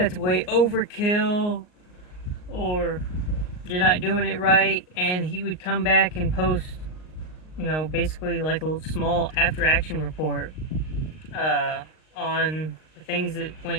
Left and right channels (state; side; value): late; right; 38 ms